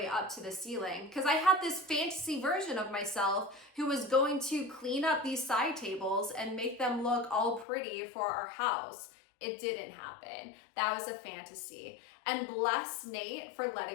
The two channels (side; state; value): right; drops out; at 7.7 s